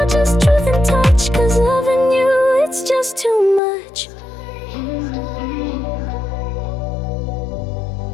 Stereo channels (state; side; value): drops out; right; at 3.6 s